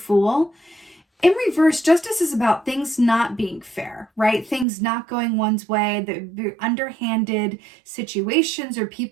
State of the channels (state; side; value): drops out; left; at 4.7 s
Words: in reverse, Justice is about things not being fair, right? Things not going one's way, the underhanded situations or